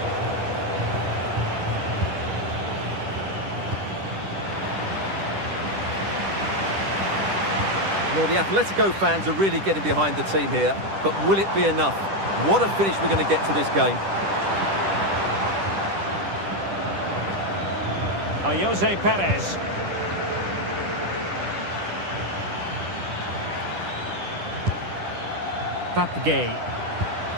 Well, the Atletico fans are really getting behind the team here, but will it be enough? What a finish we're going to get to this game. Jose Perez. Papgay.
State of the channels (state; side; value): late; left; 10 ms